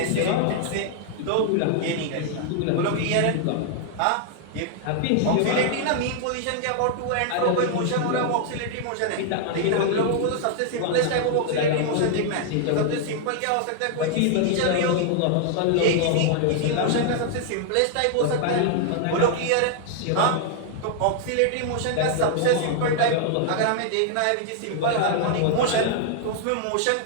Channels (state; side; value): different; both; correlation 0.00